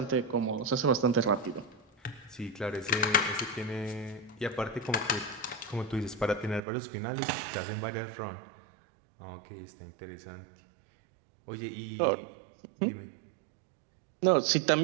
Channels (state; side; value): drops out; left; at 6.6 s